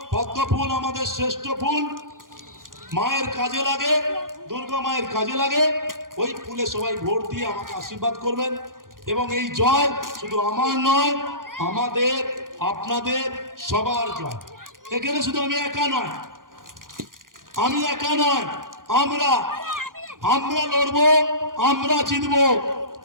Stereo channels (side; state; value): left; late; 0.90 ms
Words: পদ্ম ফুল আমাদের শ্রেষ্ঠ ফুল, মায়ের কাজে লাগে, দুর্গা মায়ের কাজে লাগে। ওই ফুলে সবাই ভোট দিয়ে আমাকে আশীর্বাদ করবেন। এবং এই জয় শুধু আমার নয়, আমাদের, আপনাদের সবার জয়। এখানে শুধু আমি একা নয়, আমরা লড়বো, আমরা জিতবো,